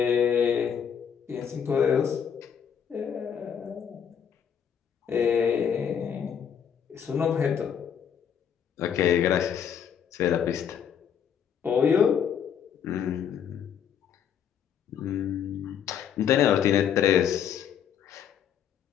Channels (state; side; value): quieter; right; 8.2 dB